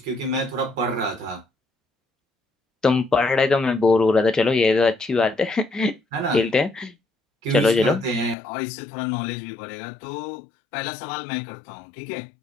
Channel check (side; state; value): right; drops out; at 8.3 s